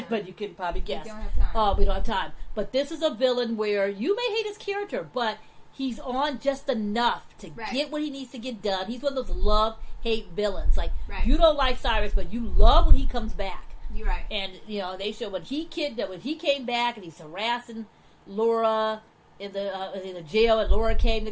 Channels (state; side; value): identical; both; correlation 1.00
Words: But you can probably guess. We don't have time. We don't have time. But this is a villain where you may hate his character, but he's on just enough to get what he needs to get done. He's one of those love-hate villains. Like, you don't like Cyrus, but you love when he comes back. You're right. And, they show when he came back and he's harassing Laura in the jail, and Laura came to